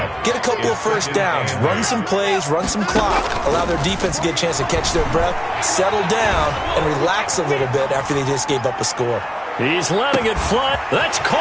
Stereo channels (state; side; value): identical; both; correlation 1.00